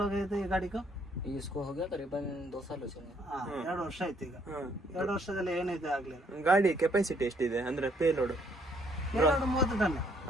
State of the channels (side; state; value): both; normal; correlation 0.67